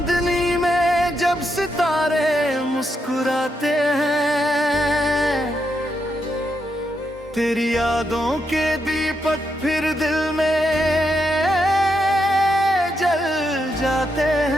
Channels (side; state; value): both; normal; correlation 0.82